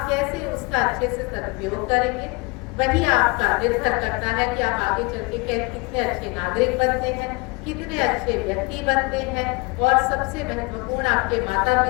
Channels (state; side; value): quieter; right; 27.3 dB